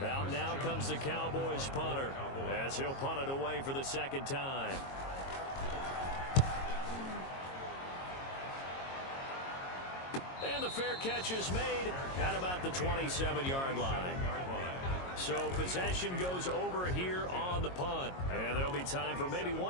Out now comes the Cowboys punter as he'll punt it away for the second time. And the fair catch is made at about the 27-yard line. So possession goes over here on the punt. And there'll be time for maybe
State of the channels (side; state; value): right; late; 22 ms